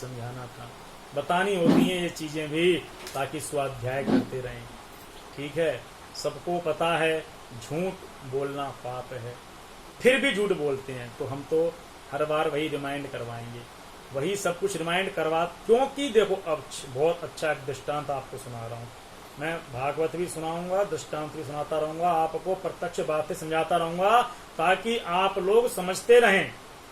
था, बतानी होती हैं ये चीजें भी, ताकि स्वाध्याय करते रहें। ठीक है, सबको पता है झूठ बोलना पाप है, फिर भी झूठ बोलते हैं। तो हम तो हर बार वही रिमाइंड करवाएंगे, वही सब कुछ रिमाइंड करवा, क्योंकि देखो अब बहुत अच्छा एक दृष्टांत आपको सुना रहा हूं मैं। भागवत भी सुनाऊंगा, दृष्टांत भी सुनाता रहूंगा, आपको प्रत्यक्ष बातें समझाता रहूंगा, ताकि आप लोग समझते रहें,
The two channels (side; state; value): both; identical; correlation 1.00